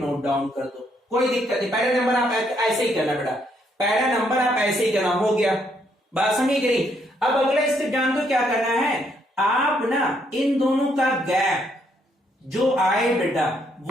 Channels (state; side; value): normal; both; correlation 0.72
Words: डाउन कर दो, कोई दिक्कत नहीं। पहला नंबर आप ऐसे ही करना बेटा, पहला नंबर आप ऐसे ही करना, हो गया। बात समझ गई? अब अगला स्टेप जान दो क्या करना है, आप ना इन दोनों का गैप जो आए बेटा